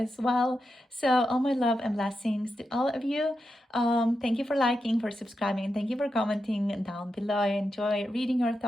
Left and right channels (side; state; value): both; normal; correlation 0.88